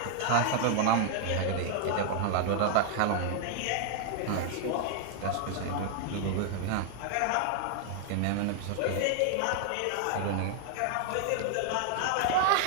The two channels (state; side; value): different; both; correlation 0.00